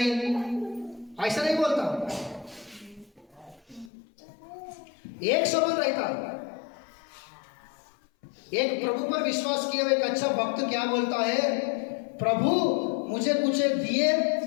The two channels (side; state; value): right; drops out; at 3.9 s